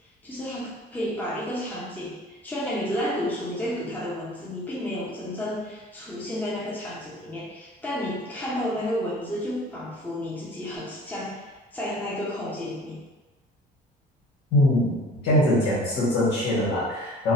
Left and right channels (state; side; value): normal; both; correlation 0.45